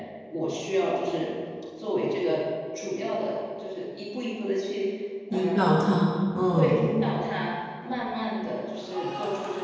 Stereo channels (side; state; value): both; identical; correlation 1.00